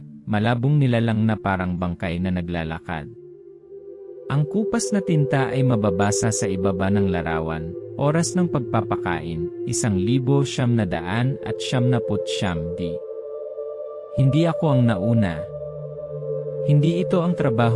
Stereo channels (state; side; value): identical; both; correlation 1.00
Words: malabong nilalang na parang bangkay na naglalakad. Ang kupas na tinta ay mababasa sa ibaba ng larawan. Oras ng pagpapakain, 1,990. Hindi ako ang nauna. Hindi ito ang